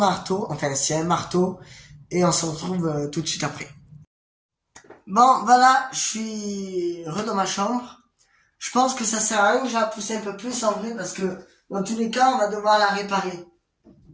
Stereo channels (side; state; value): both; identical; correlation 1.00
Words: enfin, s'il y a un marteau, et on se retrouve tout de suite après. Bon, voilà, je suis dans ma chambre. Je pense que ça sert à rien que je la pousse un peu plus en vrai, parce que dans tous les cas, on va devoir la réparer.